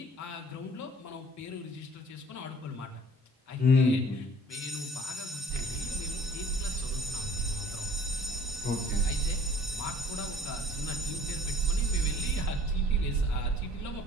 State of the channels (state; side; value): normal; both; correlation 0.52